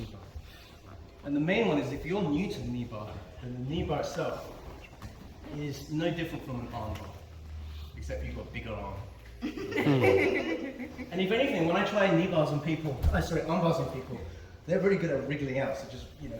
And the main one is if you're new to the kneebar, then the kneebar itself is no different from an arm bar, except you've got a bigger arm. And if anything, when I try arm bars on people, they're very good at wriggling out. So just,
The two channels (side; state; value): both; identical; correlation 1.00